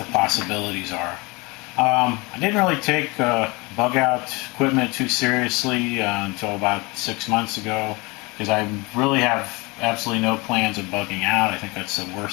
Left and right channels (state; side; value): quieter; right; 25.9 dB